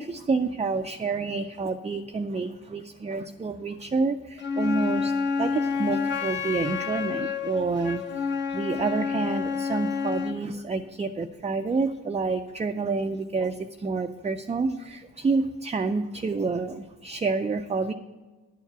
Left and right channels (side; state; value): both; normal; correlation 0.59